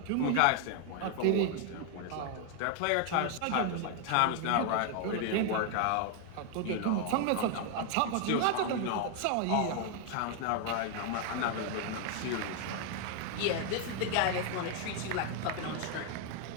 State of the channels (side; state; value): both; different; correlation 0.00